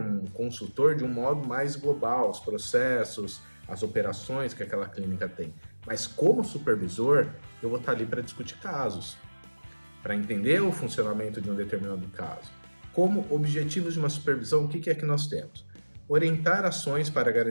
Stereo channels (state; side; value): inverted; both; correlation -1.00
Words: consultor de um modo mais global, os processos, as operações que aquela clínica tem. Mas como supervisor, eu vou estar ali para discutir casos, para entender o funcionamento de um determinado caso. Como objetivos de uma supervisão, o que é que nós temos? Orientar ações para